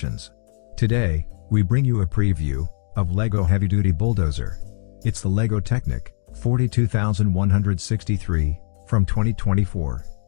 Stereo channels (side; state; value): right; silent; digital silence